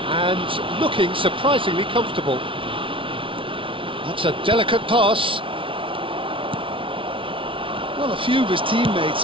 and looking surprisingly comfortable. That's a delicate pass. Well, a few of his teammates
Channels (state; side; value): late; left; 0.25 ms